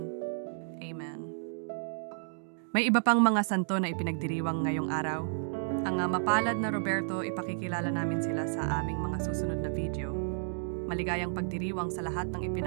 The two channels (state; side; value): silent; left; digital silence